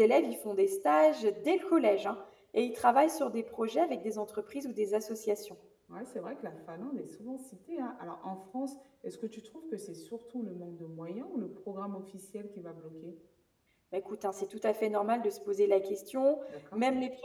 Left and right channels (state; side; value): identical; both; correlation 1.00